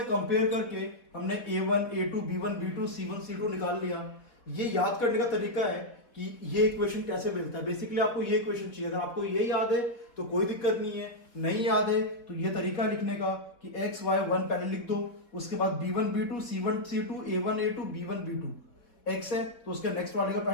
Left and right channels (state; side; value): late; right; 4.1 ms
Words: कंपेयर करके हमने a1 a2 b1 b2 c1 c2 निकाल लिया। ये याद करने का तरीका है कि ये इक्वेशन कैसे मिलता है। बेसिकली आपको ये इक्वेशन चाहिए, अगर आपको ये याद है तो कोई दिक्कत नहीं है, नहीं याद है तो ये तरीका लिखने का कि x y 1 पहले लिख दो, उसके बाद b1 b2 c1 c2 a1 a2 b1 b2, x है तो उसके नेक्स्ट वाले का